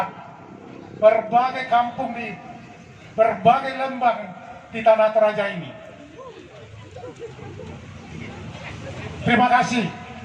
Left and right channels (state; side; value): identical; both; correlation 1.00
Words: berbagai kampung di berbagai lembang di Tanah Toraja ini. Terima kasih